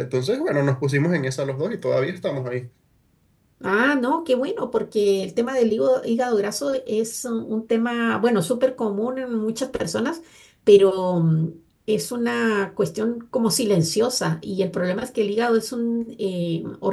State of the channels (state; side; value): identical; both; correlation 1.00